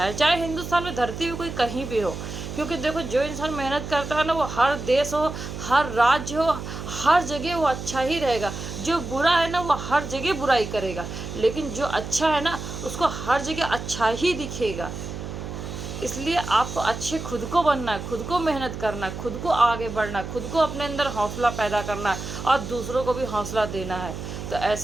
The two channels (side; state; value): right; noise; hum, 8 dB below the sound